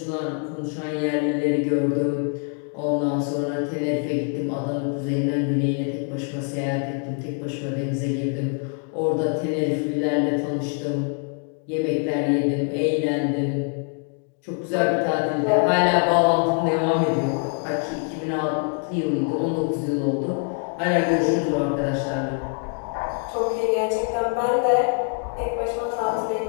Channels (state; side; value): quieter; right; 39.9 dB